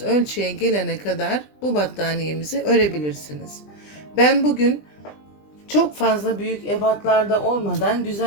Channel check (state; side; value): late; right; 20 ms